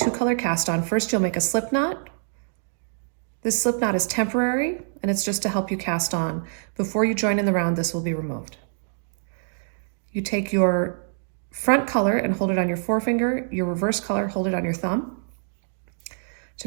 cast on, first you'll make a slip knot. This slip knot is temporary and it's just to help you cast on. Before you join in the round, this will be removed. You take your front color and hold it on your forefinger, your reverse color, hold it on your thumb.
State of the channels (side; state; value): left; silent; digital silence